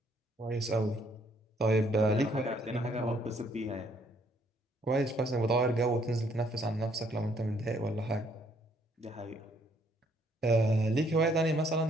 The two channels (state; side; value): normal; both; correlation 0.67